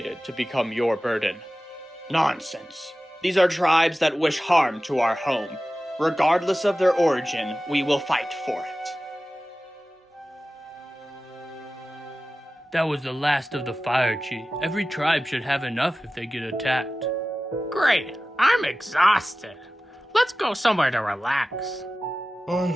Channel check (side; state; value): both; normal; correlation 0.95